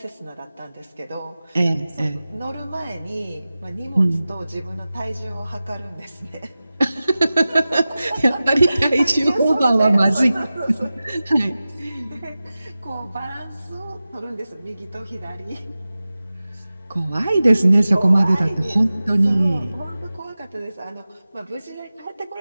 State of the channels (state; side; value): inverted; both; correlation -0.96